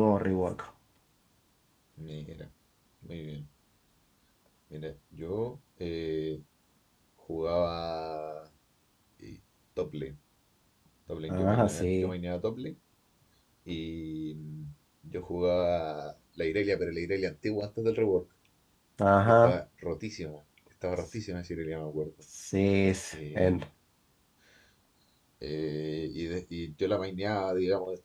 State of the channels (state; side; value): identical; both; correlation 1.00